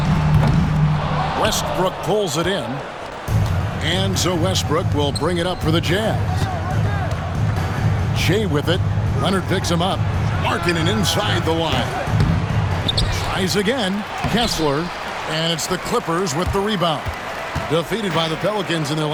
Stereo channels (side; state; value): both; identical; correlation 1.00